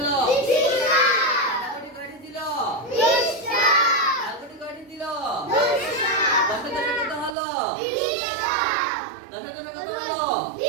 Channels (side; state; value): left; drops out; at 7.4 s